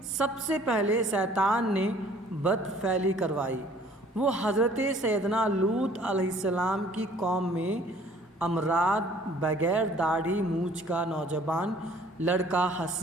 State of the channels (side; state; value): both; normal; correlation 0.55